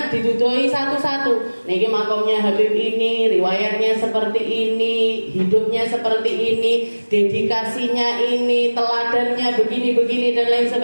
didudoi satu-satu. Niki makomnya Habib ini, riwayatnya seperti ini, hidupnya seperti ini, dedikasinya ini, teladannya begini-begini dan lain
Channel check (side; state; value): both; inverted; correlation -1.00